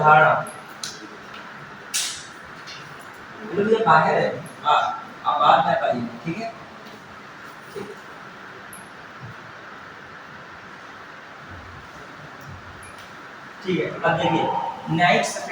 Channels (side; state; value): both; identical; correlation 1.00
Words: ये बाहर है, आप बात में पाइए, ठीक है। ठीक है, अब देखिए न्यायिक